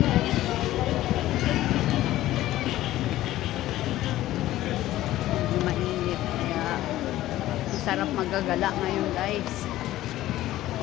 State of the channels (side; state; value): right; quieter; 15.0 dB